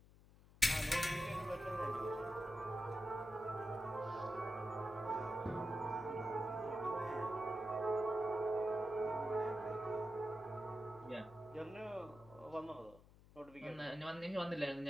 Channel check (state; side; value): noise; left; hum, 22 dB below the sound